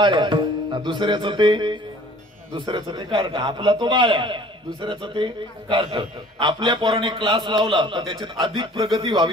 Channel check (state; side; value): normal; both; correlation 0.51